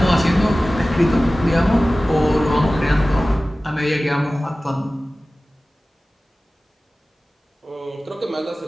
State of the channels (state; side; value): normal; both; correlation 0.97